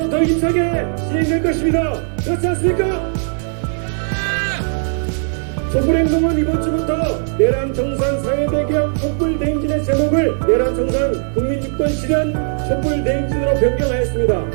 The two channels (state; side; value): silent; left; 62 dB below the other